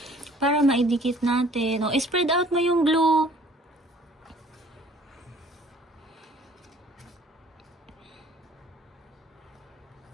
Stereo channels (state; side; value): normal; both; correlation 0.55